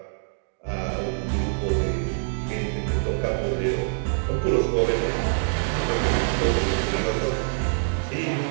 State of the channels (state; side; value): silent; left; digital silence